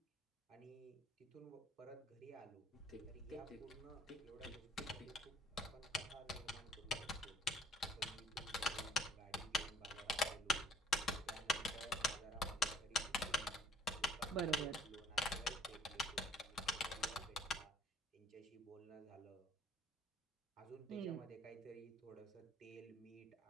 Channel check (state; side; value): normal; both; correlation 0.58